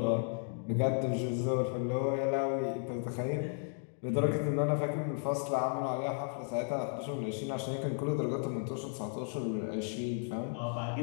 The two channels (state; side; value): silent; right; 55 dB below the other